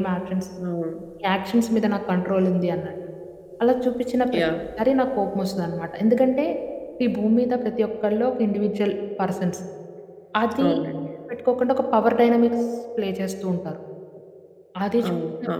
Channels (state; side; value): identical; both; correlation 1.00